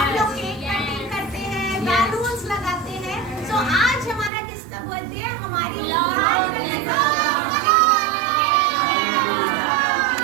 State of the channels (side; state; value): left; drops out; at 4.3 s